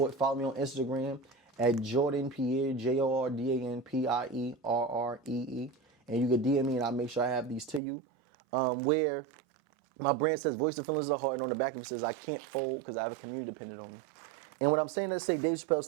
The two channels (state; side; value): drops out; left; at 7.8 s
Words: follow me on Instagram at Jordan Pierre, JordanPierree. And you can DM me and I'll make sure I have these to you. Where my brand says voice the feelings of the heart, and on the back of it says I can't fold because I have a community dependent on me. And what I'm saying to say, Dave Chappelle